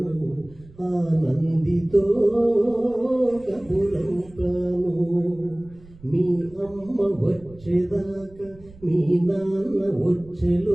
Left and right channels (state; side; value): noise; right; rumble, 23 dB below the sound